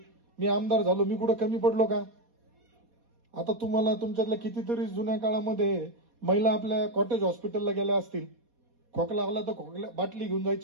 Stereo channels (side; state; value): left; late; 4.2 ms